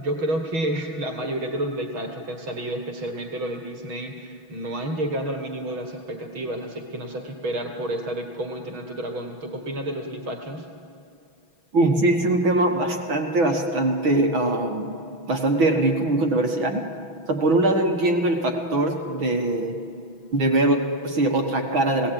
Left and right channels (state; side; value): late; left; 6.2 ms